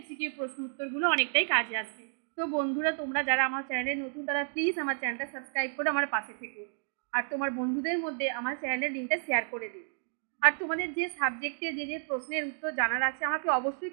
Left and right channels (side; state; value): left; silent; digital silence